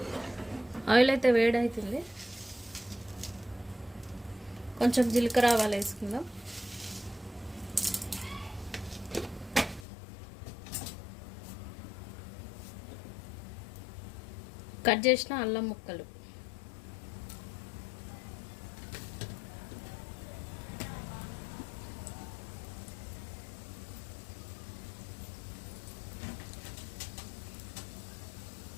ఆయిల్ అయితే వేడవుతుంది. కొంచెం జీలకర్ర ఆవాలు వేసుకుందాం. కట్ చేసిన అల్లం ముక్కలు,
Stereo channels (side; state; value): right; drops out; at 9.9 s